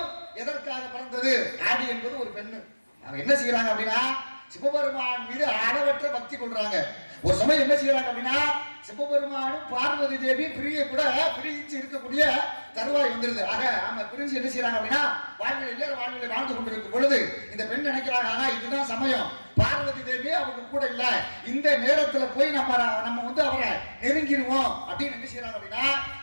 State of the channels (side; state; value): both; inverted; correlation -1.00